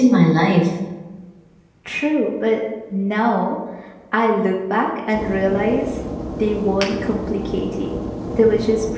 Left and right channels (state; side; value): identical; both; correlation 1.00